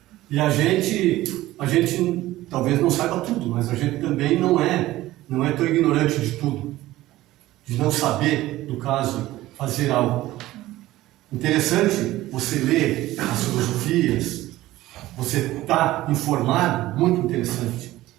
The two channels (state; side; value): quieter; left; 16.3 dB